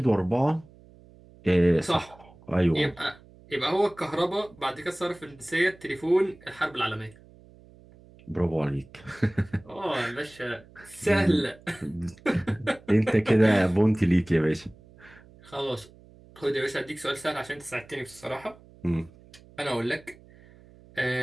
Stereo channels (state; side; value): noise; right; hum, 24 dB below the sound